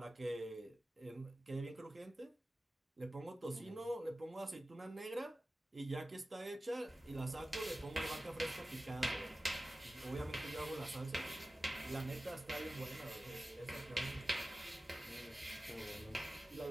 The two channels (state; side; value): normal; both; correlation 0.95